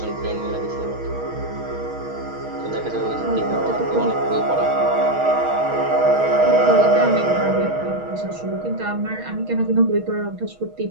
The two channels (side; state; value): left; late; 6.3 ms